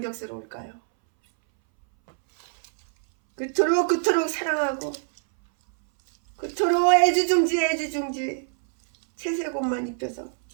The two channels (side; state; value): left; silent; 62 dB below the other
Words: 그토록 사랑하고 그토록 애지중지 채색옷만 입혀서